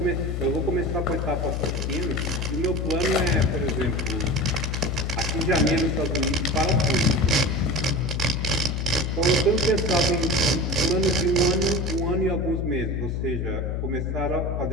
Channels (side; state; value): left; noise; hum, 1 dB below the sound